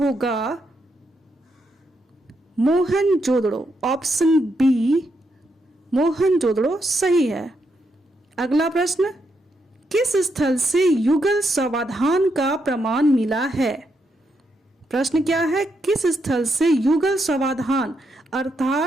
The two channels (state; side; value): normal; both; correlation 0.80